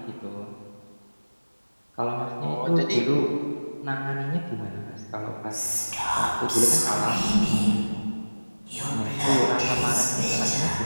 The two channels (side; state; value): both; inverted; correlation -1.00